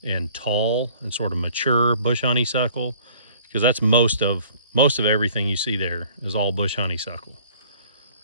and tall and sort of mature bush honeysuckle, because that's most of everything you see there is all bush honeysuckle,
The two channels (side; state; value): both; inverted; correlation -0.53